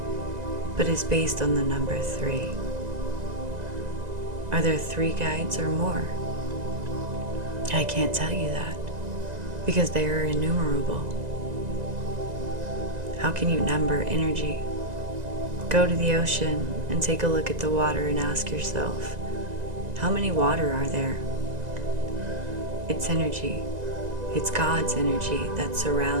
but is based on the number 3. Are there 3 guides or more? I can't tell you that, because they are innumerable. How can you number energy? Go to the ocean and take a look at the water and ask yourself, how many water are there? It's energy. It's God's energy that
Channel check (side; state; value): left; late; 2.0 ms